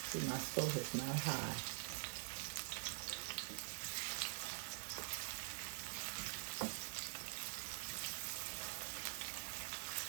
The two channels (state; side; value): silent; left; digital silence